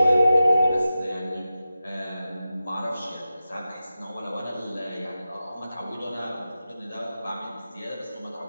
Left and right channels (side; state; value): both; inverted; correlation -0.93